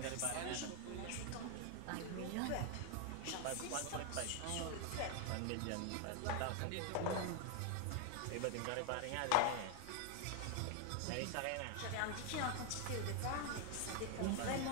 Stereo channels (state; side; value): different; both; correlation 0.00